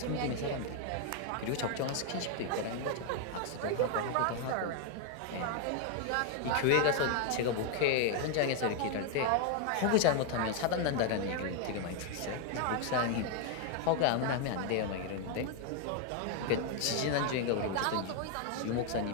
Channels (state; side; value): different; both; correlation 0.00